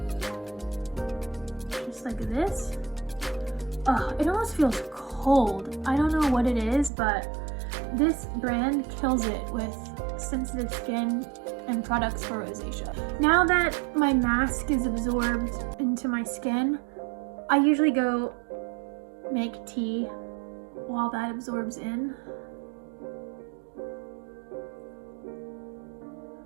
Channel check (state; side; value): drops out; left; at 6.9 s